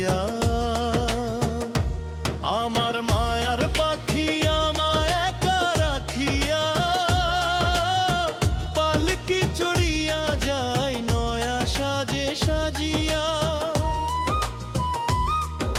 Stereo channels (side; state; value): both; identical; correlation 1.00